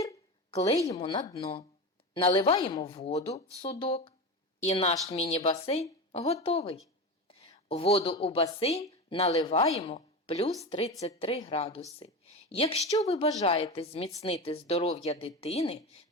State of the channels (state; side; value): normal; both; correlation 0.23